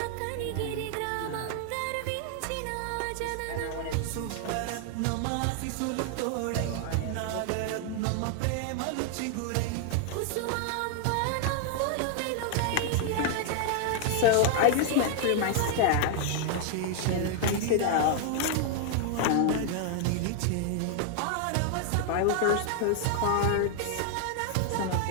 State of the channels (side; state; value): both; different; correlation 0.00